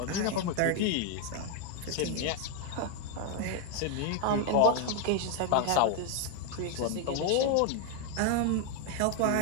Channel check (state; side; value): different; both; correlation 0.01